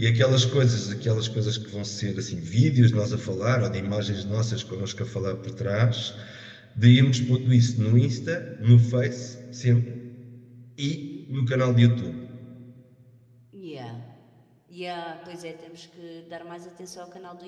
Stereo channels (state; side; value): identical; both; correlation 1.00